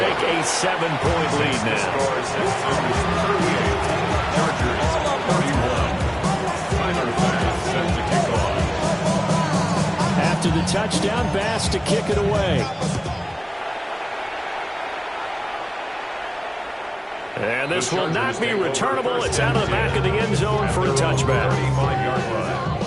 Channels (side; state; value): both; identical; correlation 1.00